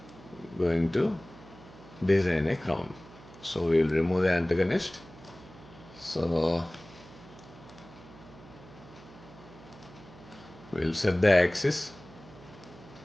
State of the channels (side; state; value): right; noise; hum, 20 dB below the sound